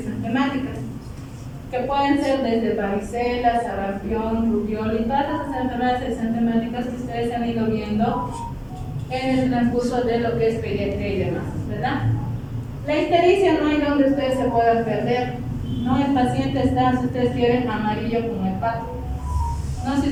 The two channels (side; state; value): both; identical; correlation 1.00